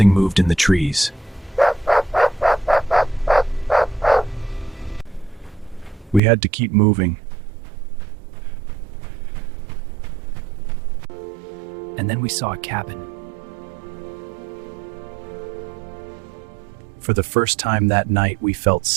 moved in the trees. We had to keep moving. And then we saw a cabin. For the first time that night, we felt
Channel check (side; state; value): left; drops out; at 6.2 s